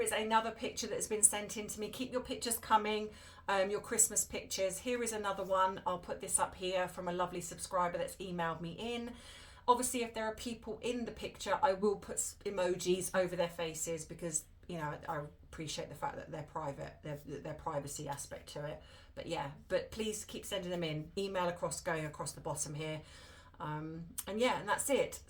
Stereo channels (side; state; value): both; identical; correlation 1.00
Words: is another picture that's been sent in to me. Keep your pictures coming, your Christmas pictures. Here is another one. I'll put this up here from a lovely subscriber that's emailed me in. Obviously, if there are people in the picture, I will put emojis over their faces, because, you know, I appreciate the fact that they're private, their privacy aspect to it. But yeah, but please keep sending them in. Email going across the bottom here. And yeah, and that's it.